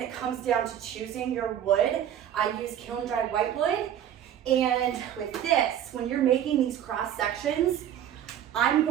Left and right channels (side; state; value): left; quieter; 10.3 dB